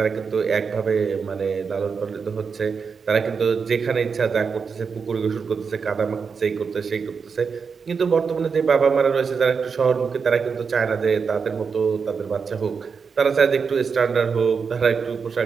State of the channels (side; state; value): left; quieter; 5.6 dB